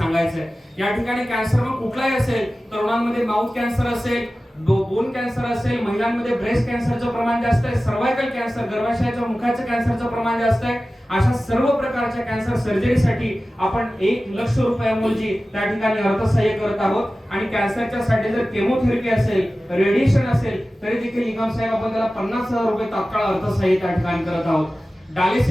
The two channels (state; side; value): normal; both; correlation 0.96